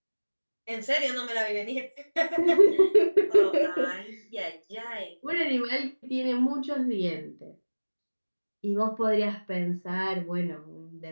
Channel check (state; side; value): inverted; both; correlation -1.00